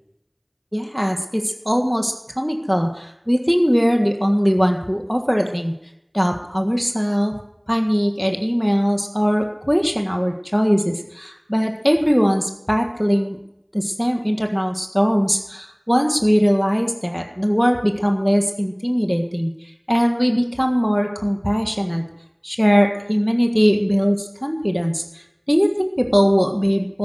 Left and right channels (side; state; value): both; identical; correlation 1.00